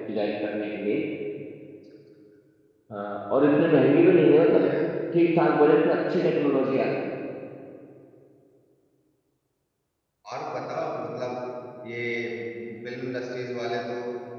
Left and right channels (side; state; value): both; identical; correlation 1.00